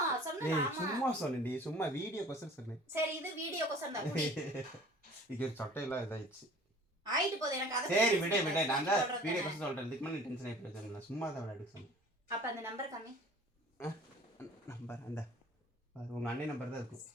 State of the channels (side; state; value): both; normal; correlation 0.48